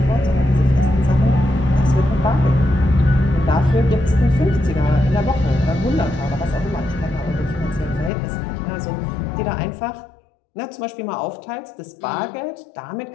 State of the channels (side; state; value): right; drops out; at 8.1 s